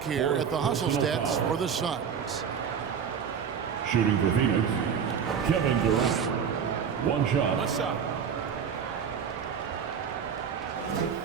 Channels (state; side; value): quieter; left; 7.2 dB